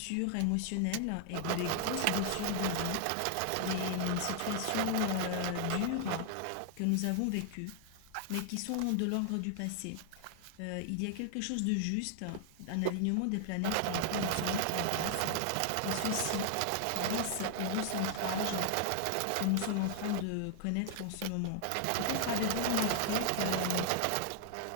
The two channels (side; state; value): both; different; correlation 0.00